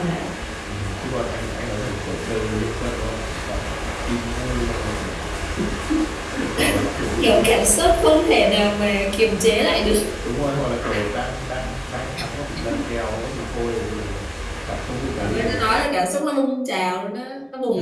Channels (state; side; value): identical; both; correlation 1.00